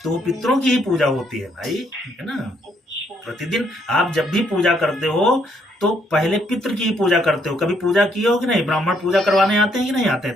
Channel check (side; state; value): both; normal; correlation 0.71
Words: तो वो हम्म, पितरों की ही पूजा होती है भाई, है ना। अच्छा। प्रतिदिन आप जब भी पूजा करते हो तो पहले पितृ की ही पूजा करते हो। कभी पूजा की हो कि नहीं? ब्राह्मण पूजा करवाने आते हैं कि नहीं आते हैं